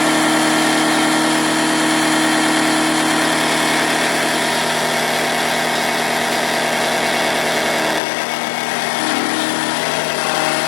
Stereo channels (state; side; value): drops out; right; at 8.0 s